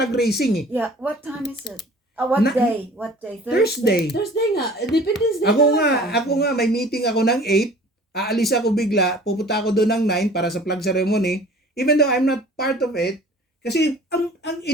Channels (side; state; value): both; normal; correlation 0.47